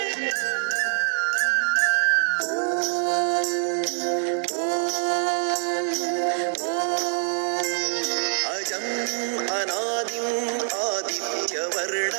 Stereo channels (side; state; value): left; silent; 62 dB below the other